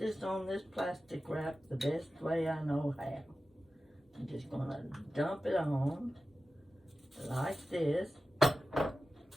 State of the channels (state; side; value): normal; both; correlation 0.94